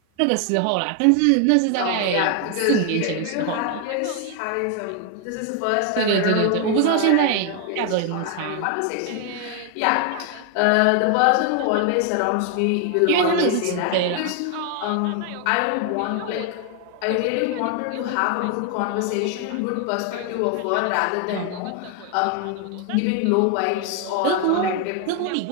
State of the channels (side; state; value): both; different; correlation 0.01